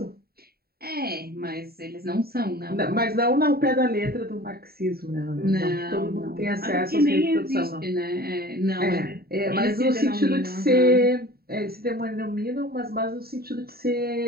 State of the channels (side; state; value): left; late; 0.45 ms